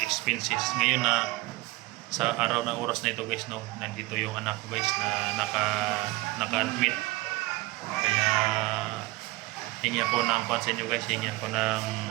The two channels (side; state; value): left; quieter; 20.6 dB